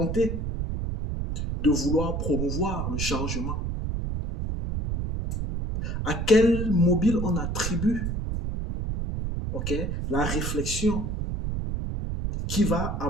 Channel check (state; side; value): noise; right; rumble, 2 dB below the sound